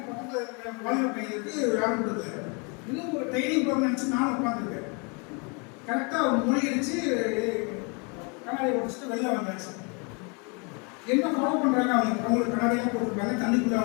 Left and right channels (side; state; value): right; quieter; 33.2 dB